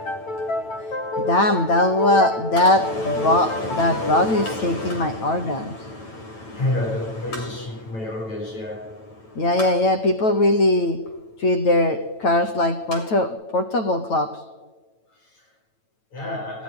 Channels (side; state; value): right; late; 9.0 ms